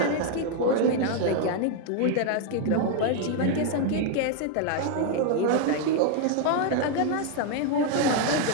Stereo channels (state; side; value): different; both; correlation 0.00